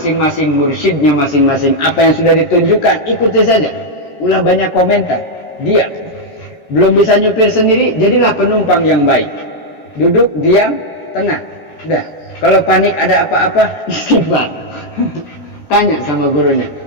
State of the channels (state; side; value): late; right; 13 ms